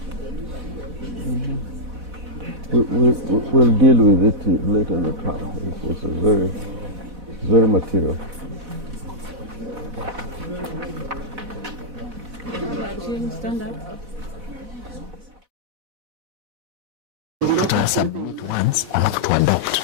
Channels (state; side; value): late; left; 4.1 ms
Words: We'll deal with it later in the trial. It's very material. Stand up. To submit once, I have to adopt